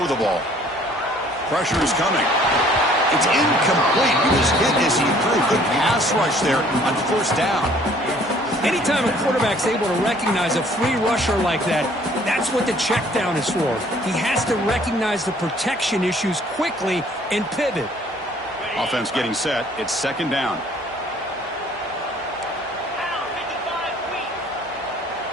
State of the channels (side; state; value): both; normal; correlation 0.57